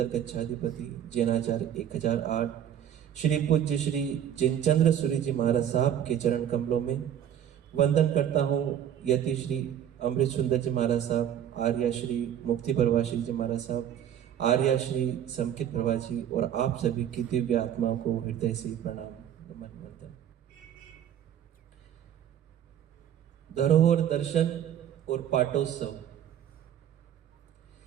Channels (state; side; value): quieter; left; 10.0 dB